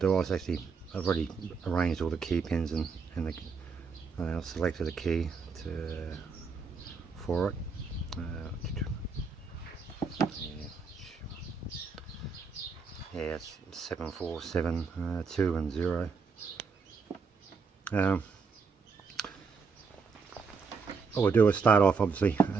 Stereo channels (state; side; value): quieter; left; 5.1 dB